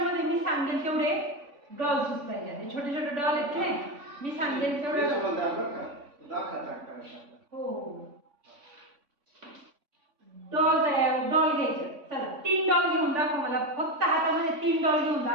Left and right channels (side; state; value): left; late; 3.5 ms